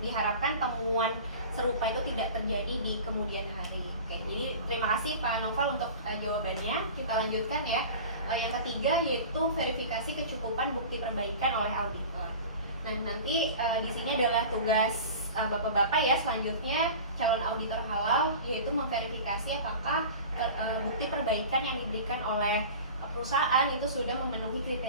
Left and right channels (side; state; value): both; inverted; correlation -0.37